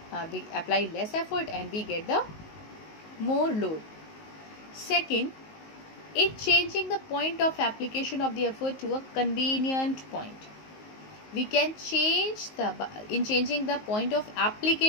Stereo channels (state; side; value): late; right; 19 ms